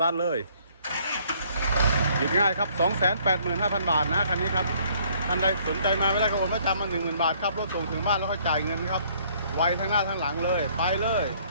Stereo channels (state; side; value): inverted; both; correlation -0.62